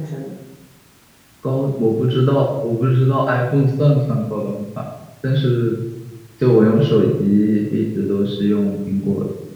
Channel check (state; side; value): identical; both; correlation 1.00